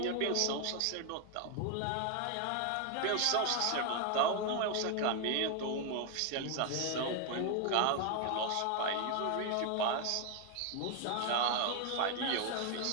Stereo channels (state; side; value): different; both; correlation 0.01